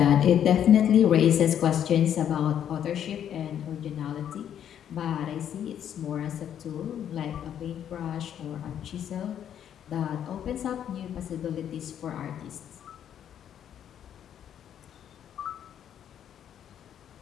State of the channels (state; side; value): quieter; right; 9.6 dB